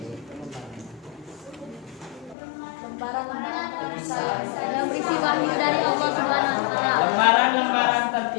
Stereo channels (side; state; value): right; drops out; at 2.4 s